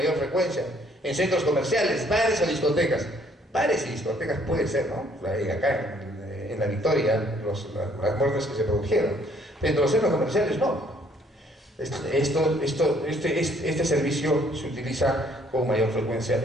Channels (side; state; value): both; normal; correlation 0.63